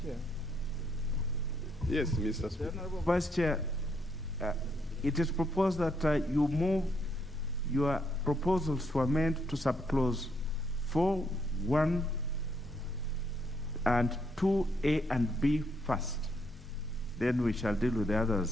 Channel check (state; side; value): normal; both; correlation 0.74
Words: Chair. Yes, Mr. Speaker. The Honorable Vice Chair, it is proposed that you move your proposals to amend to subclause 4, 1, and 2, A and B first. Then we shall deal with the